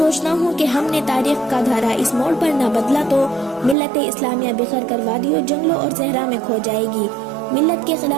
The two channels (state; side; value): drops out; left; at 3.8 s